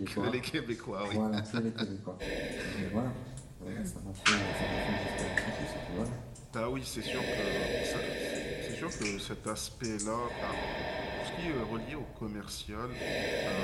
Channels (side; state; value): both; identical; correlation 1.00